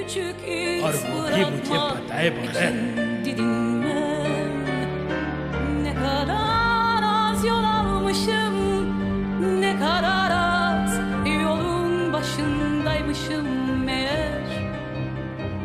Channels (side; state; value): both; identical; correlation 1.00